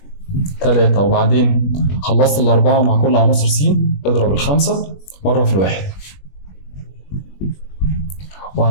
و3، وبعدين خلصت الأربعة مع كل عناصر س، اضرب الخمسة مرة في الواحد،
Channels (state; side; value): late; right; 21 ms